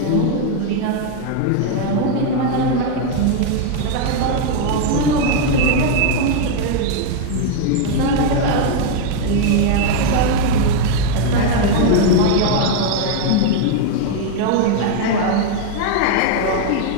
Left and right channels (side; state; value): both; different; correlation 0.00